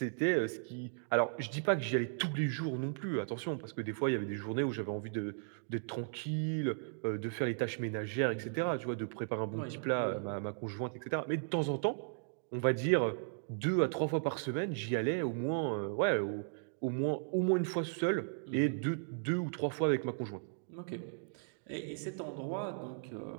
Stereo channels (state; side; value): silent; left; digital silence